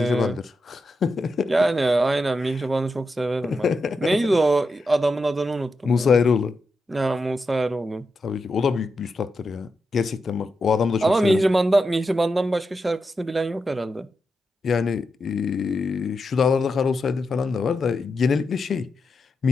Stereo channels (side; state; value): both; normal; correlation 0.87